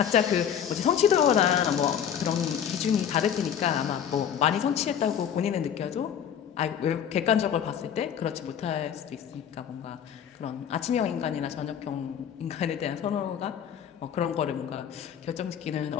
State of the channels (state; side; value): quieter; right; 8.8 dB